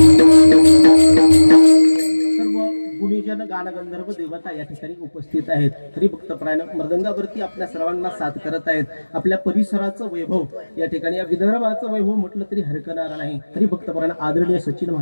गुणीजन गानगंधर्व देवता या ठिकाणी उपस्थित आहेत. हरिभक्तपरायण मृदंगावरती आपल्या सर्वांना साथ करत आहेत. आपल्या परिसराचं वैभव या ठिकाणी, या विदर्भाचं वैभव म्हटलं तरी हरकणार नाही. हरिभक्तपरायण आदरणीय सचिन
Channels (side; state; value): both; inverted; correlation -1.00